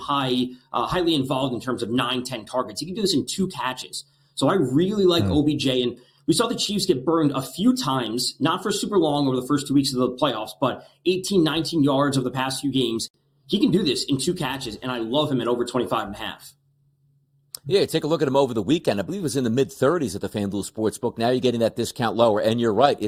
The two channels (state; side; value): identical; both; correlation 1.00